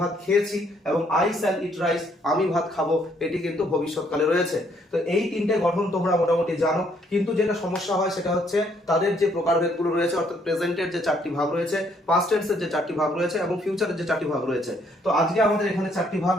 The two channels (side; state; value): both; normal; correlation 0.68